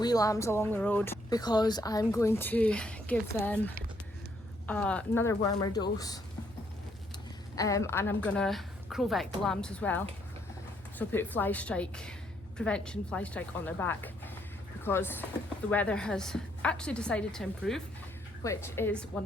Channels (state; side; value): normal; both; correlation 0.71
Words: lambs along the road because I'm going to give them another wormer dose, and I'm gonna crowvec the lambs as well. So put fly strike prevention, fly strike on their back, because the weather has actually decided to improve, which is